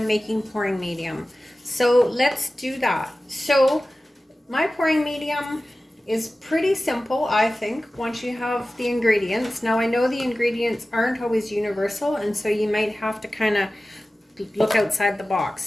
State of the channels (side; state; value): both; normal; correlation 0.96